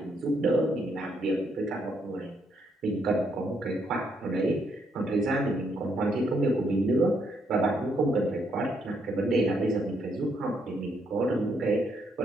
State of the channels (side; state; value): both; normal; correlation 0.74